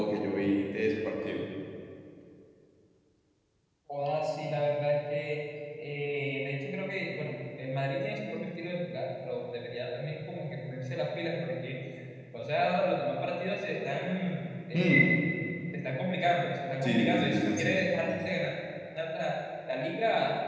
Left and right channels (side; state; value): both; identical; correlation 1.00